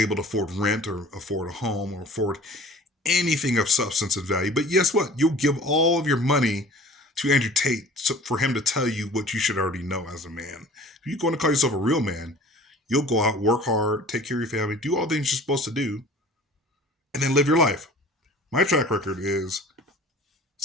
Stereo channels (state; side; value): normal; both; correlation 0.46